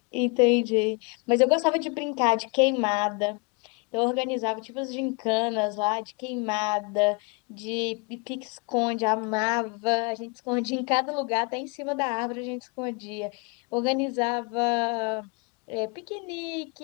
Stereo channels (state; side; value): quieter; right; 30.6 dB